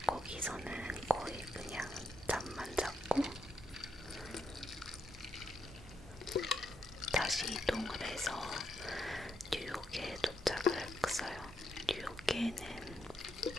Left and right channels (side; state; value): both; normal; correlation 0.81